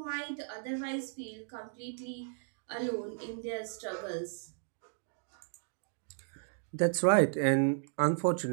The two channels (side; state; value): left; silent; digital silence